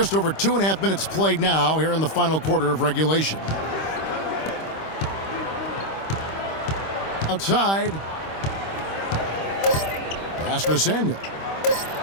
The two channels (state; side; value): late; right; 25 ms